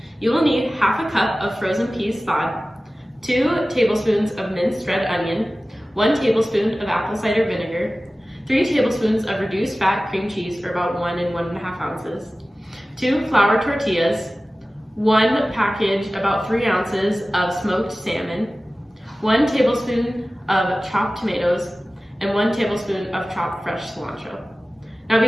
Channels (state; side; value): normal; both; correlation 0.96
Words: You will need half a cup of frozen peas thawed, 2 tablespoons of minced red onion, 1 tablespoon of apple cider vinegar, 3 tablespoons of reduced fat cream cheese, or about 1 and 1.5 ounces, 2 flour tortillas, 1 package, about 3 ounces of smoked salmon, 1 tablespoon of chopped tomatoes, and 1 tablespoon of chopped fresh cilantro. Now